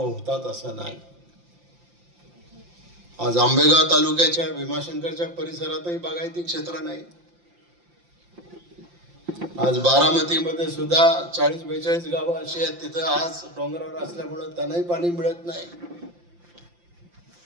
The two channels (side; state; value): left; late; 5.8 ms